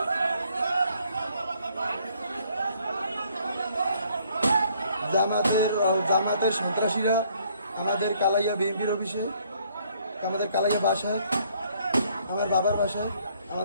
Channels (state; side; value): inverted; both; correlation -0.64